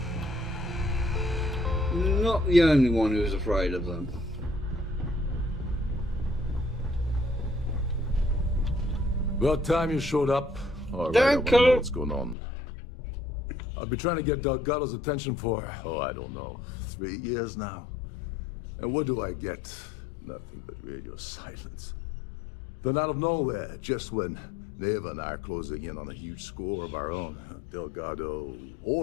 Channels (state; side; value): drops out; right; at 12.4 s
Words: not the only one who's afraid of them. About time you showed up. Alright, I want to know what's going on. I've been trying to get Delgado's attention for, I don't know, 3 years now. And what do I get? Nothing but radio silence. Then out of nowhere, just when Neva and I are closing in on a huge score of our own, Delgado